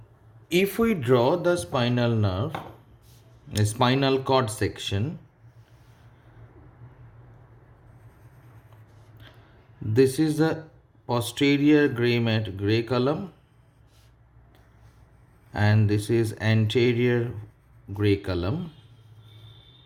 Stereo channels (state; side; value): identical; both; correlation 1.00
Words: If we draw the spinal nerve, a spinal cord section, this is the posterior gray column and this is anterior gray column.